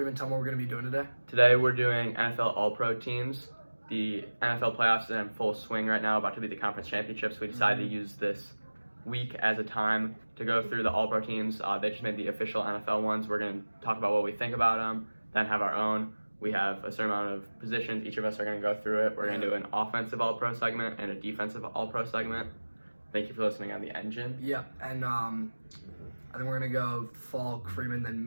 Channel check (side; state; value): both; inverted; correlation -1.00